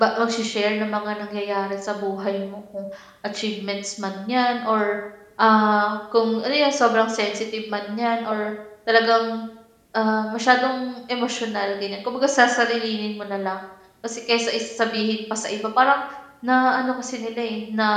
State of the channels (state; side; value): identical; both; correlation 1.00